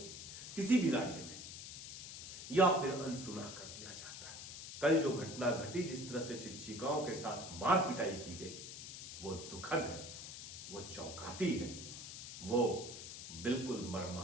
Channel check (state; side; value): noise; left; hiss, 10 dB below the sound